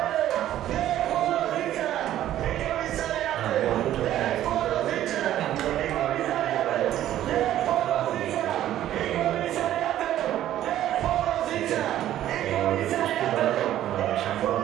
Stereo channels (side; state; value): left; quieter; 12.5 dB